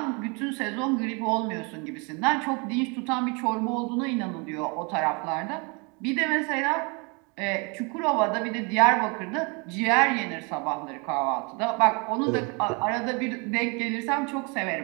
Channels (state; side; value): quieter; left; 31.4 dB